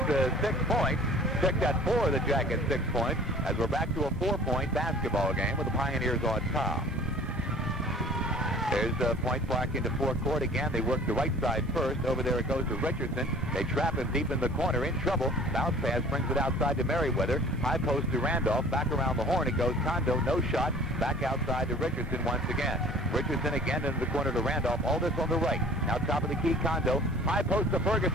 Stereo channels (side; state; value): both; normal; correlation 0.47